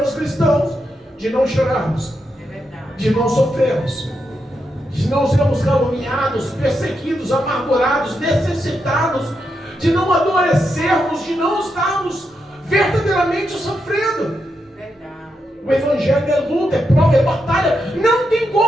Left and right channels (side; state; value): both; normal; correlation 0.84